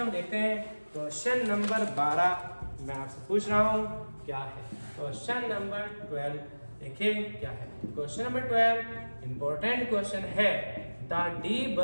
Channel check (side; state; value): both; inverted; correlation -1.00